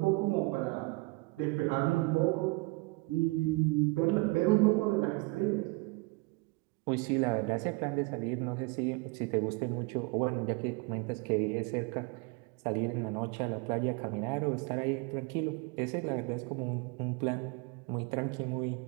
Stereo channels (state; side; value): quieter; left; 26.0 dB